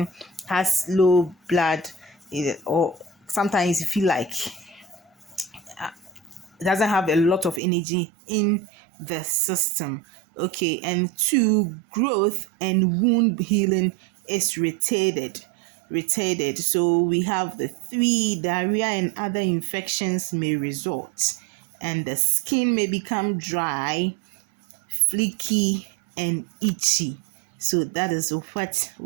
has low blood, or sometimes you feel like doesn't have a lot of energy in the system. Okay, and two, growth and wound healing is retarded. So we have the three, diarrhea and other infections may result, and the skin may become dry, flaky, and itchy. So that is what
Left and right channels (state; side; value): drops out; left; at 7.6 s